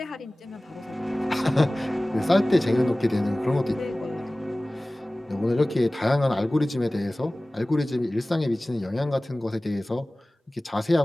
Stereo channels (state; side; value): normal; both; correlation 0.98